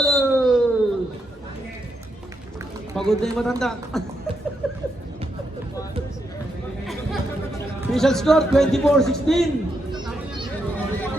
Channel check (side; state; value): both; normal; correlation 0.81